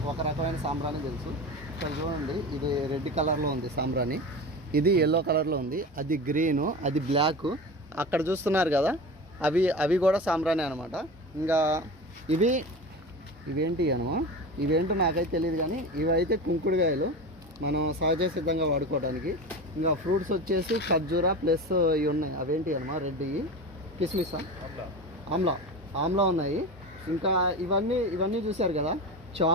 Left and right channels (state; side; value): normal; both; correlation 0.28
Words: ఒక రకమైన సాంబ్రాణి తెలుసు. ఇక్కడ చూడండి, ఇది రెడ్ కలర్లో ఉంది సాంబ్రాణి, ఇది ఎల్లో కలర్లో ఉంది, అది గ్రీను, అది బ్లాక్. అక్కడ చూస్తున్నారు కదా, అవి కూడా సాంబ్రాణి అనమాట. ఇంకా ఇవేంటి ఇవేంటో నాకైతే తెలియదు, కానీ ఇవైతే కుంకుడుకాయలు మనం సహజ సిద్ధంగా వాడుకోవడానికి. ఇంకా ఫ్రూట్స్ వచ్చేసి ఖర్జూరా ప్లస్ ఇవి ఉన్నాయి, అవేంటి రెడ్ కిస్మిసా, ఆమ్లా ఉన్నాయి. ఇంకా ఇవన్నీ చూశారు కదా,